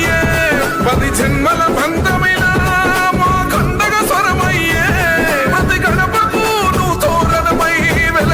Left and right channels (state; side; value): identical; both; correlation 1.00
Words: 10 జన్మల బంధమిలా మా కండగ స్వరమయ్యే, ప్రతి గడపకు నువ్వు తోరణమై